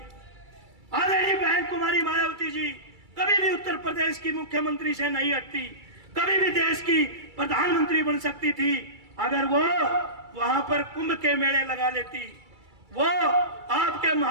आदरणीय बहन कुमारी मायावती जी कभी भी उत्तर प्रदेश की मुख्यमंत्री से नहीं हटती, कभी भी देश की प्रधानमंत्री बन सकती थी अगर वो वहां पर कुंभ के मेले लगा लेती। वो आपके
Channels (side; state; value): left; late; 2.3 ms